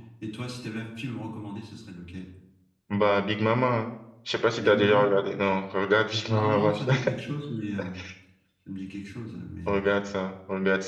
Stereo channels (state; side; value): identical; both; correlation 1.00